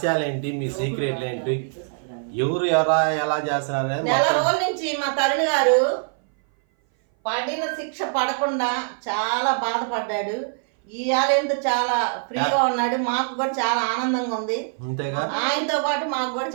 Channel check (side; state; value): left; silent; 59 dB below the other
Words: ఏంటి, మీ సీక్రెట్లు ఏంటి, ఎవరు ఎలా చేస్తున్నారు? నెల రోజుల నుంచి మా తరుణ్ గారు పడిన శిక్ష పడకుండా చాలా బాధపడ్డాడు. ఇవాళ ఎంత చాలా ఫ్రీగా ఉన్నాడు. మాకు కూడా చాలా ఆనందంగా ఉంది. అంతేగా, ఆయనతో పాటు మాకు కూడా